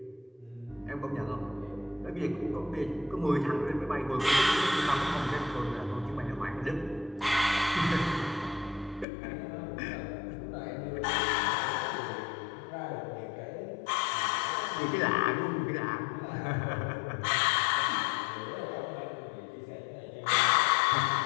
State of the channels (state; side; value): drops out; right; at 9.1 s